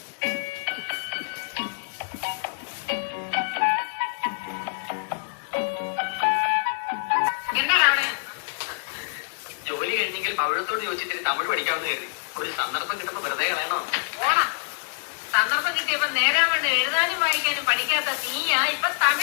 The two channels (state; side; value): silent; right; digital silence